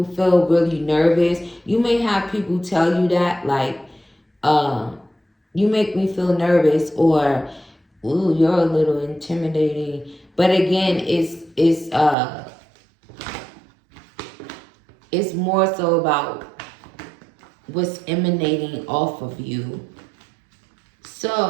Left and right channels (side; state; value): left; drops out; at 12.2 s